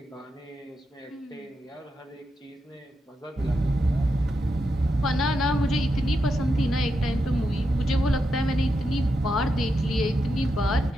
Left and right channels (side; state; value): both; normal; correlation 0.85